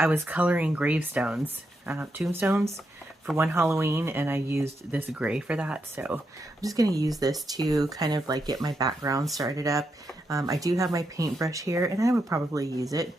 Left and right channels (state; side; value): normal; both; correlation 0.83